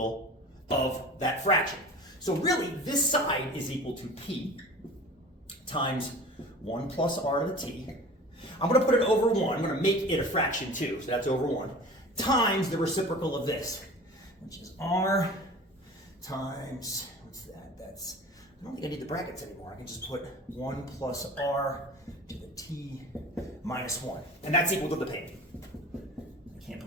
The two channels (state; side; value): normal; both; correlation 0.39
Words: of that fraction. So really, this side is equal to p times 1 plus r to the t. I'm going to put it over 1. I'm going to make it a fraction too, so that's over 1, times the reciprocal of this, which is r times, what's that? That's, I don't think I need the brackets anymore. I can just put 1 plus r to the t minus 1. And that's equal to the payment. I can't